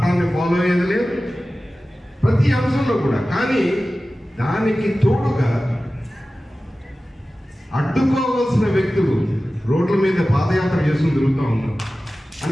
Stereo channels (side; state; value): both; normal; correlation 0.96